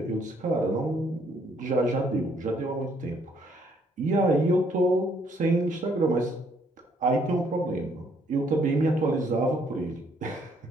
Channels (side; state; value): both; normal; correlation 0.67